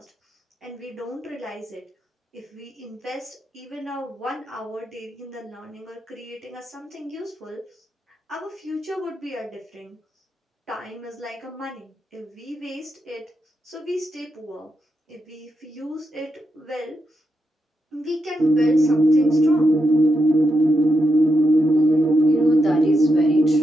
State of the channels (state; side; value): normal; both; correlation 0.84